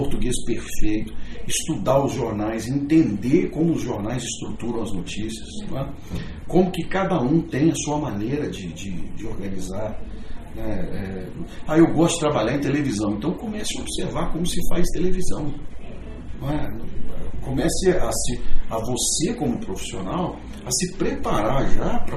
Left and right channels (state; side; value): identical; both; correlation 1.00